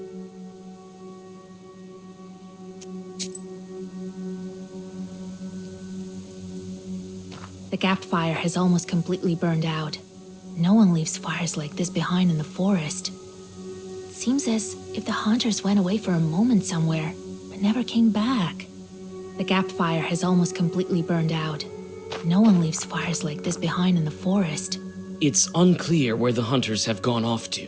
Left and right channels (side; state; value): both; identical; correlation 1.00